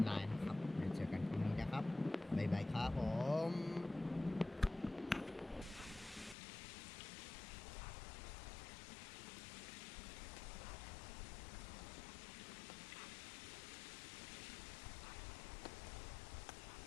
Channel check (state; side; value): drops out; right; at 6.4 s